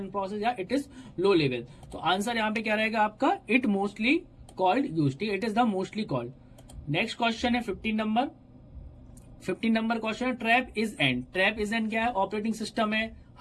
process, या इट इज लो लेवल। तो answer यहाँ पे क्या रहेगा आपका, it mostly called use, ठीक है, it is the mostly called. Next question है 15 नंबर क्वेश्चन है trap is end, trap is end क्या है, ऑपरेटिंग सिस्टम है,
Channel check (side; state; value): both; identical; correlation 1.00